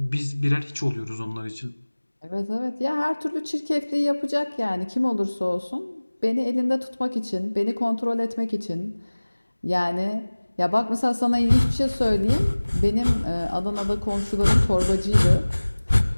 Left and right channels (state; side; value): inverted; both; correlation -1.00